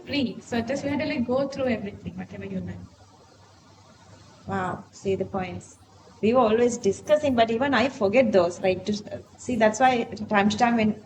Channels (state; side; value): identical; both; correlation 1.00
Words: free. So just you have to like go through everything, whatever you learn. Wow, see the points. We were always discussing, but even I forget those. Like to see, that's why time to time when